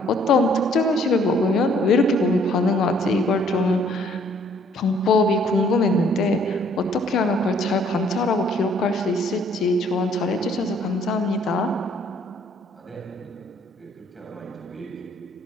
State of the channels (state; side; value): normal; both; correlation 0.62